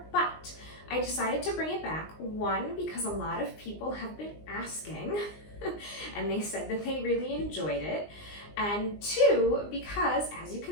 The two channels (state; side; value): late; right; 19 ms